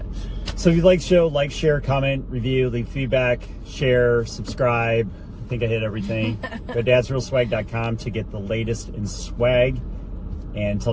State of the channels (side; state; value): both; identical; correlation 1.00